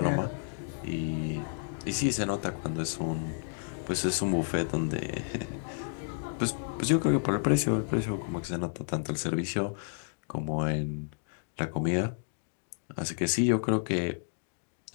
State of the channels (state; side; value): silent; right; digital silence